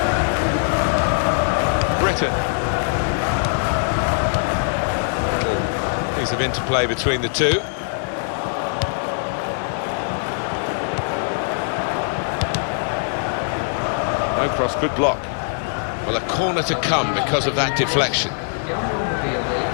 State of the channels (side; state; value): right; silent; digital silence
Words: Britain. Piece of interplay between the two. No cross, good block. Well, a corner to come because of that deflection.